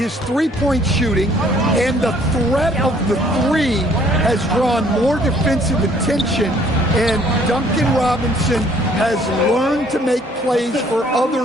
three-point shooting, and the threat of the three has drawn more defensive attention, and Duncan Robinson has learned to make plays for other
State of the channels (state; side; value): normal; both; correlation 0.60